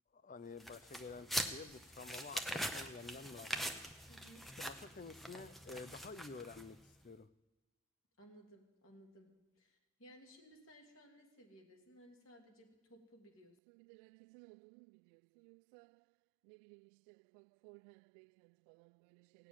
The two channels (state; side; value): drops out; left; at 13.6 s